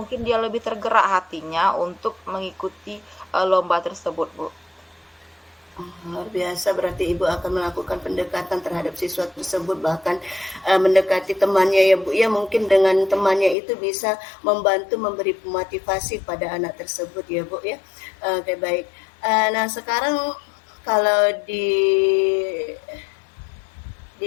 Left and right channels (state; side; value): drops out; right; at 13.6 s